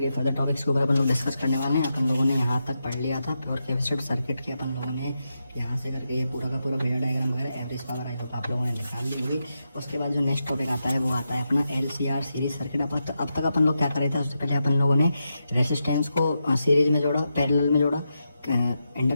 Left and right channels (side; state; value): both; inverted; correlation -0.87